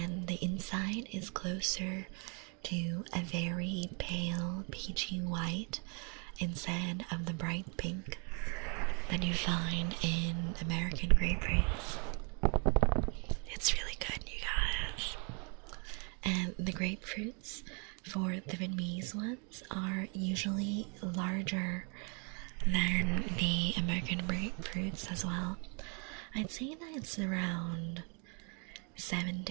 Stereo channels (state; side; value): quieter; left; 35.9 dB